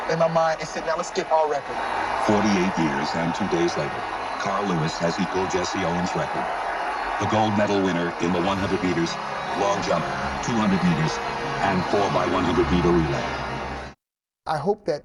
in my mind, it said, now let's get our record. 48 years and 2 days later, Carl Lewis has equaled Jesse Owens' record. The gold medal winner in the 100 meters, long jump, 200 meters, and 4x100 meter relay. I hope that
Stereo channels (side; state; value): both; identical; correlation 1.00